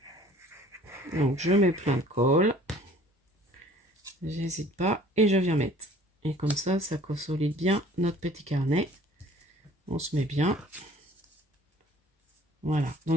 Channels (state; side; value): normal; both; correlation 0.52